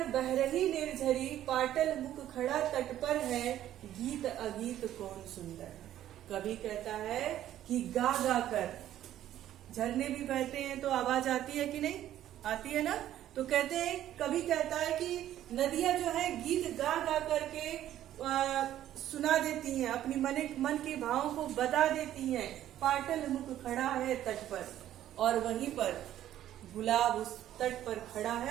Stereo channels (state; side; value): quieter; left; 12.2 dB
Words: बह रही निर्झरी, पाटल मुख खड़ा तट पर है, गीत अगीत कौन सुंदर है। कवि कहता है कि गा गा कर, झरने भी बहते हैं तो आवाज आती है कि नहीं, आती है ना। तो कहते हैं, कवि कहता है कि नदियां जो है गीत गा गा करके सुना देती हैं, अपनी मन के भावों को बता देती हैं। पाटल मुख खड़ा है तट पर, और वहीं पर गुलाब उस तट पर खड़ा